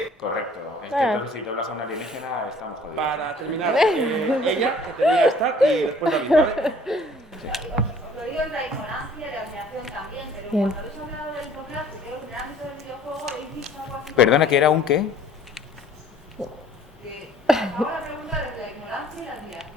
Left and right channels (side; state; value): both; normal; correlation 0.54